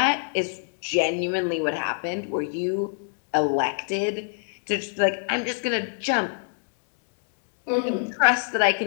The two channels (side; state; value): right; silent; digital silence